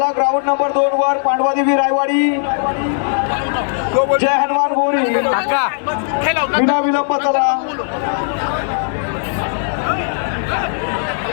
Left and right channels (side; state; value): right; silent; digital silence